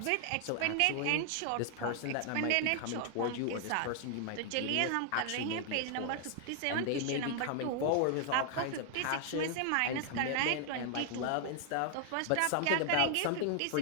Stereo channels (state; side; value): different; both; correlation 0.00